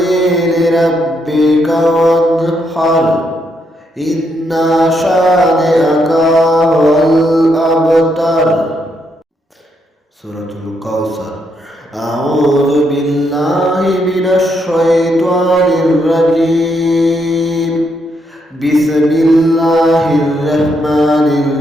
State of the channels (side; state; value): both; normal; correlation 0.77